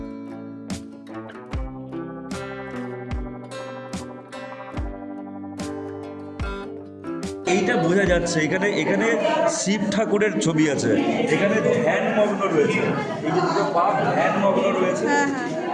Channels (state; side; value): identical; both; correlation 1.00